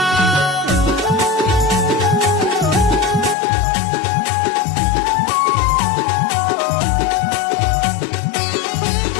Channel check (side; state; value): right; drops out; at 3.4 s